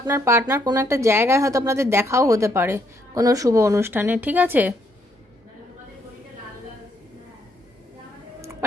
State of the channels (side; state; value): both; normal; correlation 0.72